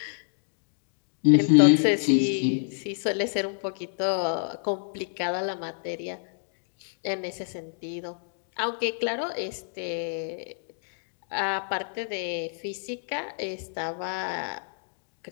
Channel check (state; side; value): silent; right; digital silence